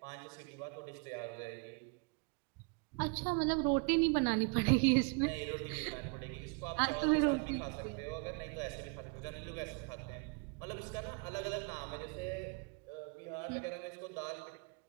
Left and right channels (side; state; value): left; quieter; 33.4 dB